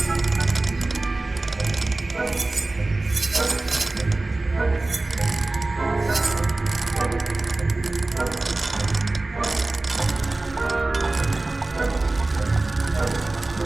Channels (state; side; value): quieter; left; 3.0 dB